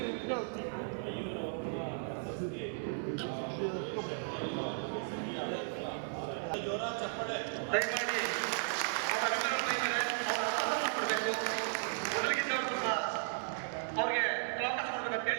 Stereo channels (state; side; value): silent; left; 54 dB below the other